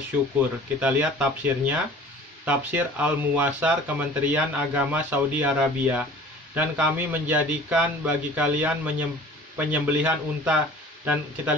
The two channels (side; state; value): both; normal; correlation 0.46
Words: Kita lihat tafsirnya. Tafsir Al-Muwassar Kementerian Agama Saudi Arabia. Dan kami menjadikan bagi kalian penyembelihan unta. Dan